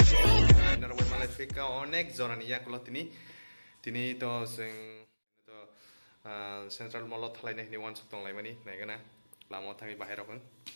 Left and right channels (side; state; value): both; inverted; correlation -1.00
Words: Narway Malafika onek zonani yakulo tini to sing to central mall thalai nei ni wan sutong lai mani nai gana lamo thangi bahira kon